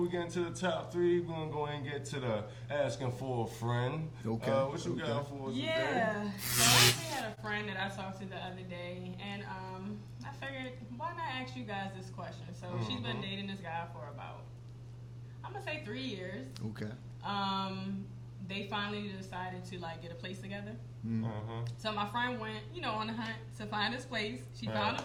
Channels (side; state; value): both; identical; correlation 1.00